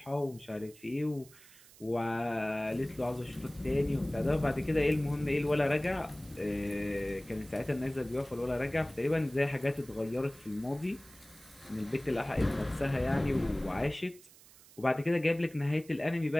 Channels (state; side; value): noise; right; hiss, 23 dB below the sound